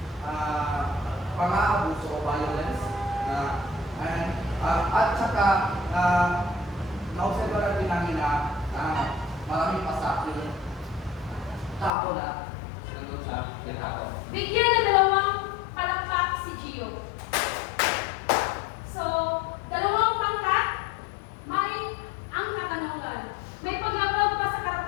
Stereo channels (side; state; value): right; drops out; at 11.9 s